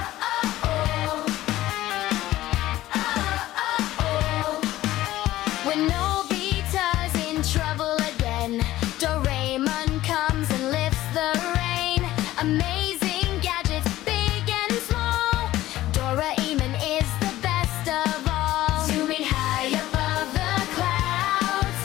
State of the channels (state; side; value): quieter; right; 15.4 dB